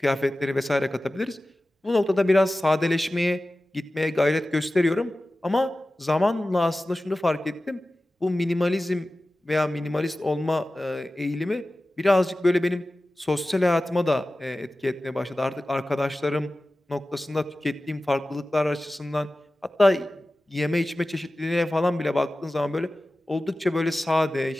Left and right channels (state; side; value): normal; both; correlation 0.96